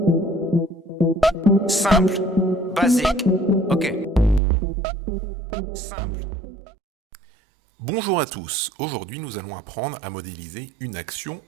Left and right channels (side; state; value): left; drops out; at 4.4 s